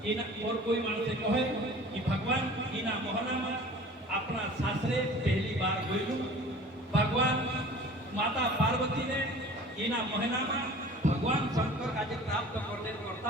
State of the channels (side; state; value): both; normal; correlation 0.44